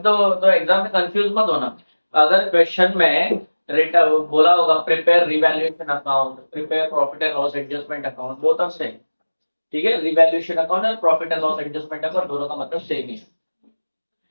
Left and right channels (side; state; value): both; inverted; correlation -1.00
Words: तो एग्जाम में कंफ्यूज मत होना। अगर क्वेश्चन में बोला होगा prepare revaluation account, prepare profit and loss adjustment account, both are same. ठीक है, रिवैल्यूएशन अकाउंट और profit and loss adjustment account दोनों का मतलब सेम ही है।